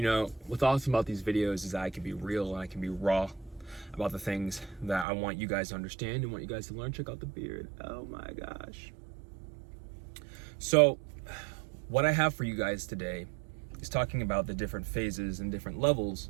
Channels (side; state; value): left; drops out; at 5.1 s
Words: know, what's awesome about these videos is that I can be real and I can be raw about the things that I want you guys to understand and want you guys to learn. Check out the beard. Oh my gosh. So, what I have for you guys today is talking about the different phases and different levels